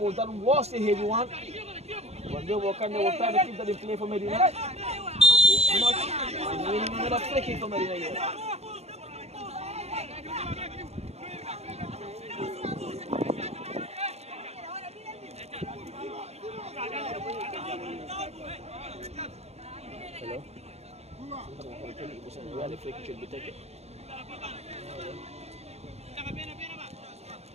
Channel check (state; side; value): late; left; 0.31 ms